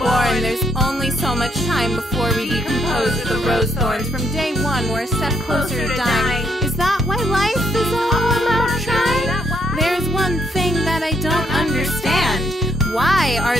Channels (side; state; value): both; normal; correlation 0.73